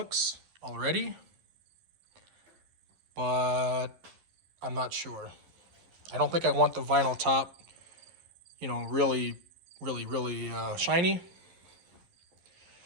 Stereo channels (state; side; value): late; left; 11 ms